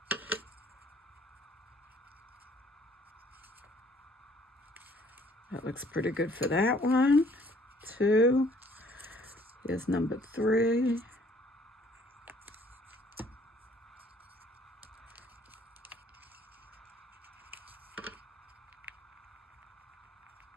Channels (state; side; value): normal; both; correlation 0.59